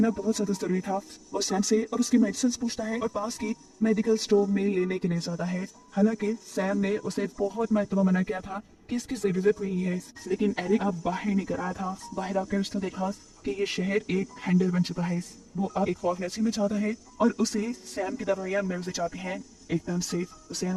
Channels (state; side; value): identical; both; correlation 1.00